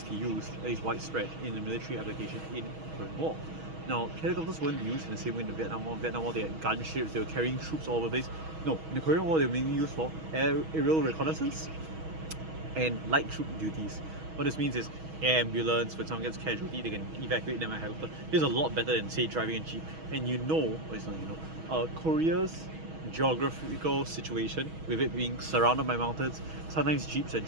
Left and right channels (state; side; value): late; left; 6.3 ms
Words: used, at least widespread, in the military application in the Korean War. Now, helicopters weren't used in the same way in the Vietnam War. Vietnam War, they had gunships, they were carrying troops all over the place. No, in the Korean War, they were mainly used for aerial reconnaissance and light troop duties. What this means is air ambulance, when someone gets casualty, they can evacuate them by helicopter. This is a lot better than, say, driving a jeep. And Korea's geographical situation, with it being surrounded by mountains, sometimes jeeps and